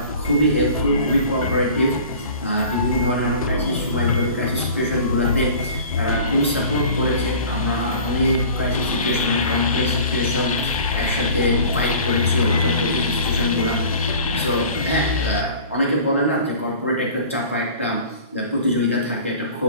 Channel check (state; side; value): inverted; both; correlation -0.43